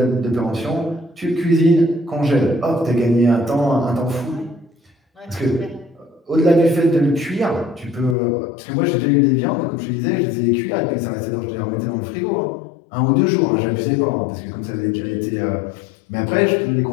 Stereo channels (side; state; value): right; drops out; at 8.2 s